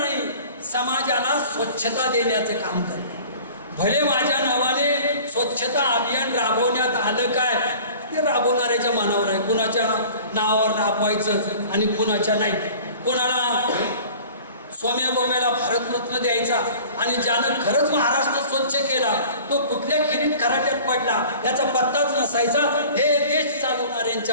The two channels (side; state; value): both; inverted; correlation -0.45